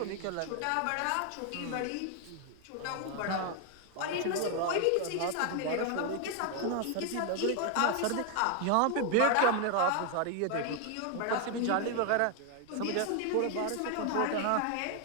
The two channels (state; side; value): different; both; correlation 0.01